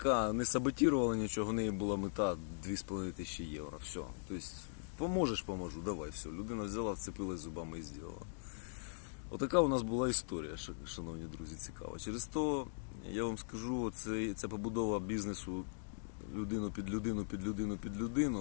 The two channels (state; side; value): silent; right; digital silence